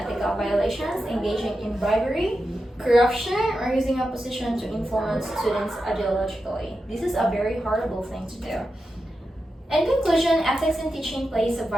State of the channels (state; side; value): normal; both; correlation 0.89